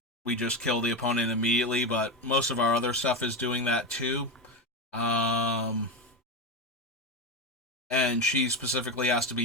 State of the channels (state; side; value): normal; both; correlation 0.15